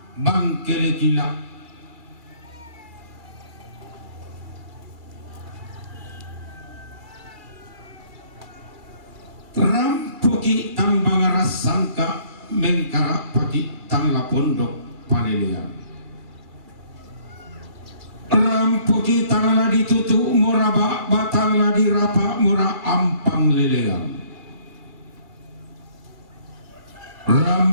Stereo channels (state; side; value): late; left; 2.2 ms